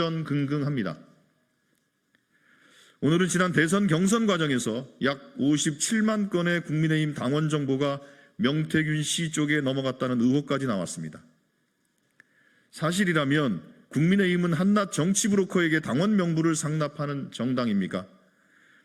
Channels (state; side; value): identical; both; correlation 1.00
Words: 오늘은 지난 대선 경선 과정에서 약 57만 건의 국민의힘 당원 정보가 명태균 씨 쪽에 넘어갔다는 의혹까지 나왔습니다. 사실이라면 국민의힘은 한낱 정치 브로커에게 당원 명부를 상납하는 정당입니까?